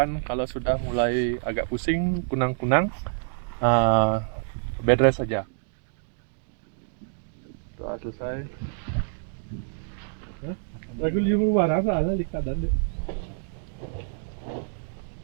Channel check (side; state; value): left; silent; digital silence